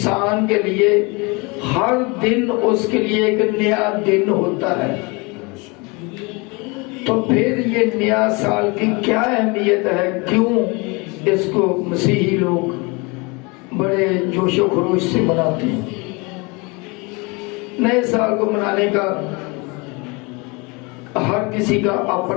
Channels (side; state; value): right; quieter; 27.9 dB